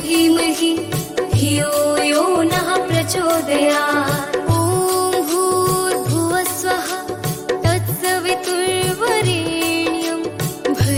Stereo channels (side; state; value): both; identical; correlation 1.00